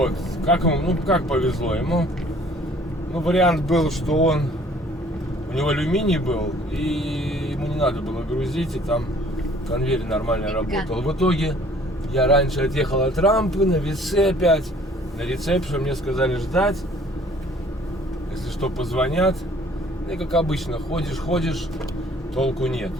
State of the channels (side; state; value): both; normal; correlation 0.56